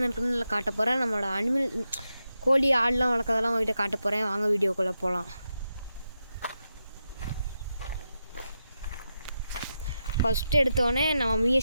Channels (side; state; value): both; inverted; correlation -0.87